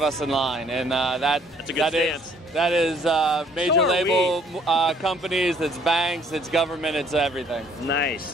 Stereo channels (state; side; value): normal; both; correlation 0.61